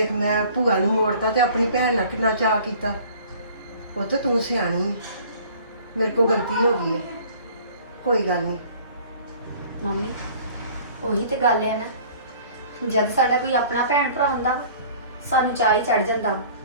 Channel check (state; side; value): inverted; both; correlation -0.50